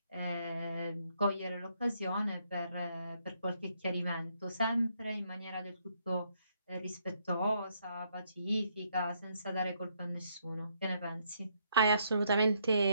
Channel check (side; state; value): both; inverted; correlation -0.73